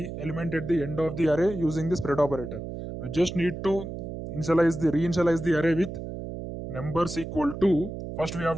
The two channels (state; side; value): noise; right; hum, 8 dB below the sound